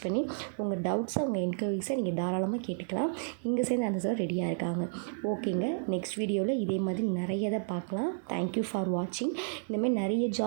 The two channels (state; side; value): silent; left; digital silence